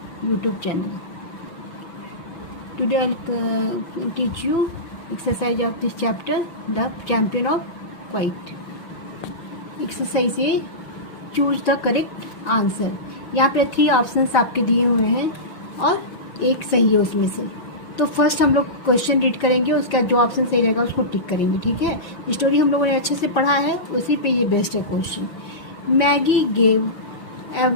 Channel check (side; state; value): right; late; 6.0 ms